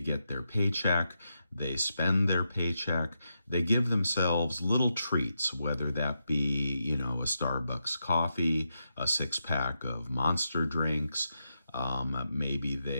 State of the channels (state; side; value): inverted; both; correlation -0.85